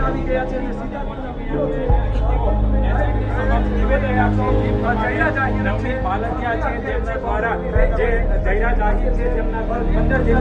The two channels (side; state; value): both; identical; correlation 1.00